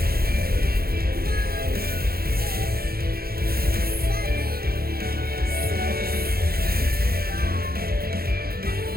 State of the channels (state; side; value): late; left; 0.44 ms